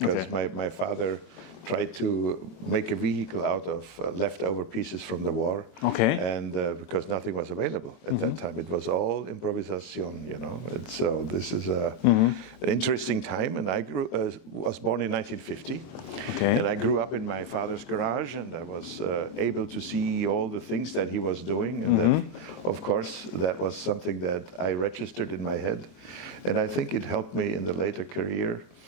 my father tried to make a vehicle out of leftover pieces from the war. And because nothing was available at that time, it was all improvisation, And so this is an interesting time. And I was born in 1950, and I grew up in my father's garage, and I was able to see all the things that he was doing. And that, of course, that was something that I registered in my head. And I think it helped me in the later career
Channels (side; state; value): right; late; 25 ms